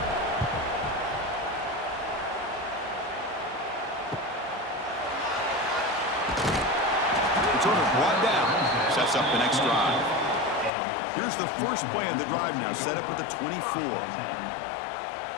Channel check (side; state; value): right; drops out; at 10.7 s